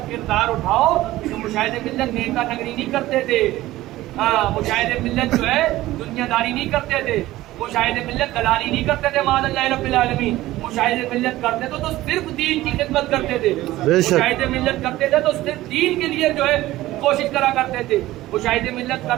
کردار اٹھاؤ تو مشاہد ملت نیتا نگری نہیں کرتے تھے. ہاں مشاہد ملت جو ہے دنیا داری نہیں کرتے تھے. مشاہد ملت دلالی نہیں کرتے تھے. معاذ اللہ رب العالمین. مشاہد ملت کرتے تھے تو صرف دین کی خدمت کرتے تھے. مشاہد ملت کرتے تھے تو صرف دین کے لیے جو ہے کوشش کرا کرتے تھے. مشاہد ملت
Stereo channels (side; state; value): left; quieter; 16.4 dB